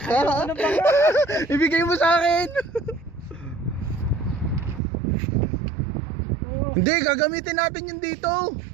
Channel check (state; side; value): drops out; left; at 4.8 s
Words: Ibigay mo sa akin. Hindi, gagamitin natin yun dito.